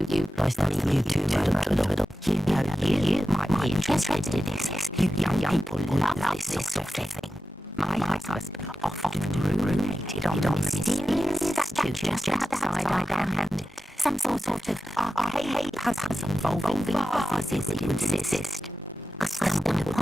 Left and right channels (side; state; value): both; normal; correlation 0.93